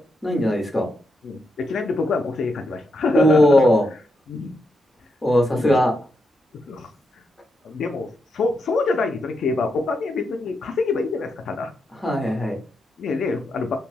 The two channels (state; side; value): normal; both; correlation 0.83